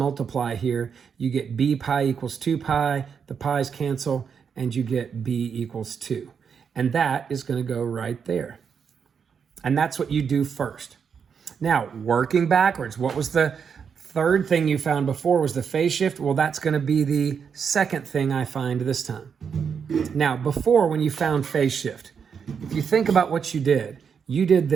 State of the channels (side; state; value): left; quieter; 6.7 dB